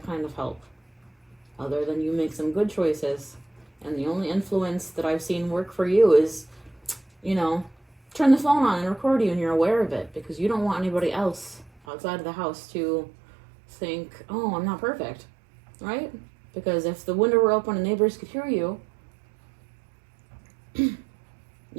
kind of help. Other than you make some good choices. And the only influence that I've seen work for you is, you know, turn the phone on and record you and you're aware of it, because you don't want anybody else outside of the house to think, oh, I'm not perfect, right? Because if the window were open and neighbors could hear you,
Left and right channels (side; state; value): left; drops out; at 11.7 s